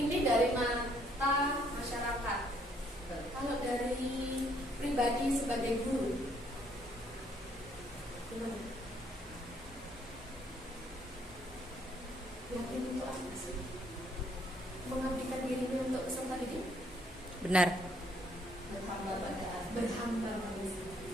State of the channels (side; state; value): both; normal; correlation 0.67